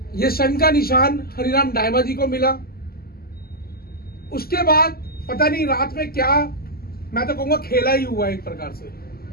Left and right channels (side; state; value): right; late; 0.44 ms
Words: ये शंख का निशान हरिराम दाइमा जी को मिला। उसके बाद पता नहीं रात में क्या, मैं तो कहूंगा खेला ही हुआ एक प्रकार से,